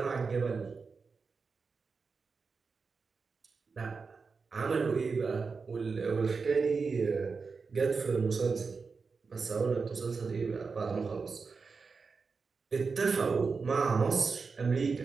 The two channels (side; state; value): left; quieter; 4.8 dB